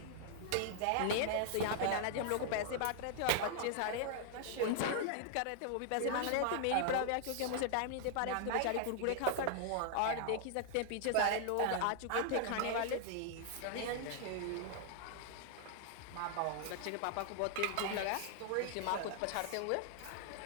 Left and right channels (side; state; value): both; different; correlation -0.01